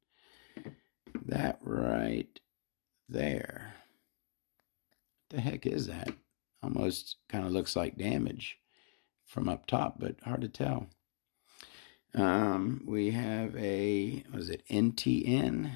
That right there. What the heck is that? Almost kind of looks like damage from up top, but hard to tell. We have a, was it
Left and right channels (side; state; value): right; silent; digital silence